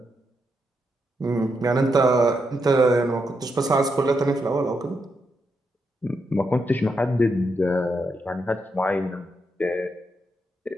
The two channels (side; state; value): both; normal; correlation 0.82